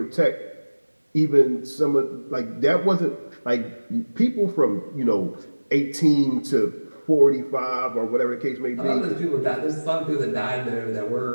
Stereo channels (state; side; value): inverted; both; correlation -1.00